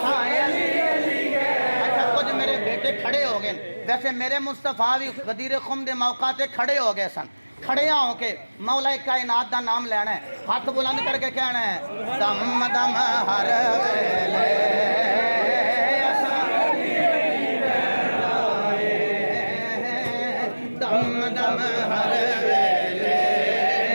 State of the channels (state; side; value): inverted; both; correlation -1.00